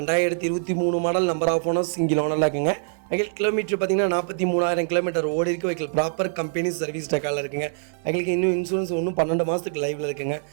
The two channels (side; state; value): left; silent; 56 dB below the other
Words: model, number of owner, single ஓனரில் இருக்குங்க. வெஹிக்கிள் கிலோமீட்டர் பார்த்தீங்கன்னா 43,000 கிலோமீட்டர் ஓடி இருக்குது. வெஹிக்கிள் ப்ராப்பர் கம்பெனி சர்வீஸ் ரெக்கார்டில் இருக்குங்க. வெஹிக்கிளுக்கு இன்னும் இன்சூரன்ஸ் இன்னும் 12 மாதத்துக்கு லைவில் இருக்குங்க.